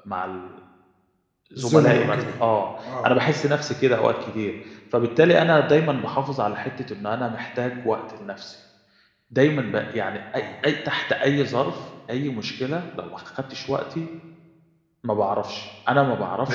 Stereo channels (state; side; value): identical; both; correlation 1.00